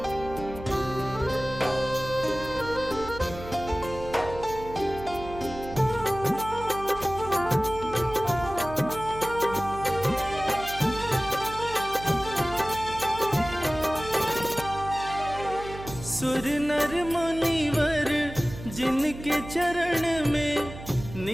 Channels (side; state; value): right; noise; hum, 13 dB below the sound